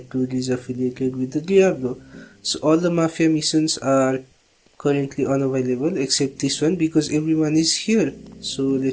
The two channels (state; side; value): identical; both; correlation 1.00